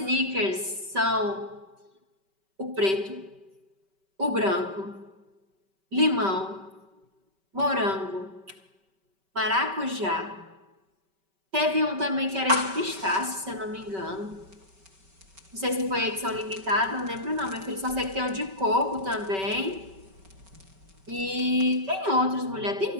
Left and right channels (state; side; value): late; left; 5.2 ms